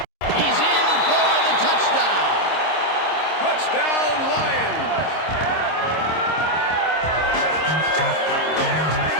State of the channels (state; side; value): late; right; 26 ms